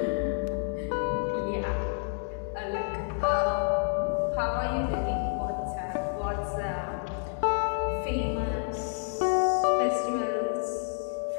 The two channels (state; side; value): silent; right; digital silence